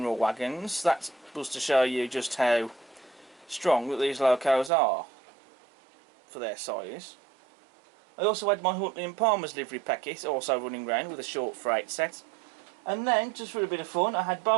wagons. That was to show you just how strong that these locos are for their size. I also had my Huntley and Palmer's Livery Peckett also running around with a short freight set. And then, just for a bit of fun, I had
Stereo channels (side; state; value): left; drops out; at 4.7 s